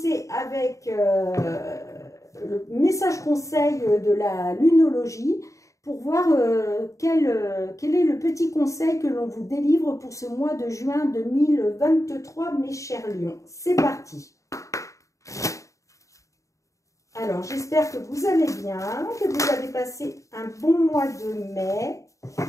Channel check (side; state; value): right; late; 0.15 ms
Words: avec le message conseil de la lunologie pour voir quel est le petit conseil que l'on vous délivre pour ce mois de juin 2023, mes chers lions. C'est parti. Alors, j'espère que vous allez bien, que vous avez passé un bon mois de mai.